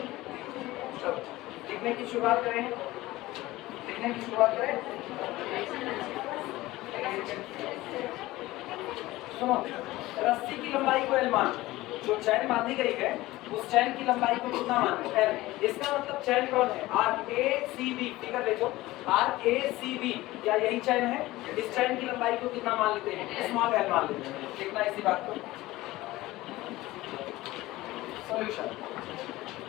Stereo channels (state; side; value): quieter; right; 18.1 dB